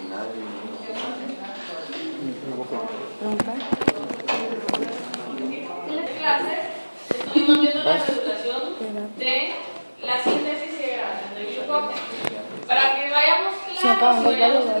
Preguntar. En las clases estuvimos viendo la regulación de la síntesis y degradación del glucógeno. Para que vayamos Se acaban claros y los vayamos valores, a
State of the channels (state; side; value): inverted; both; correlation -1.00